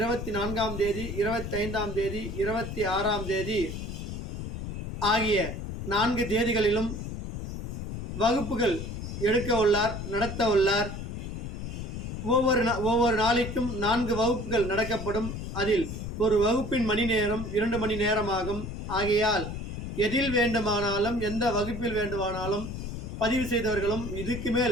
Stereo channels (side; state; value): left; noise; rumble, 6 dB below the sound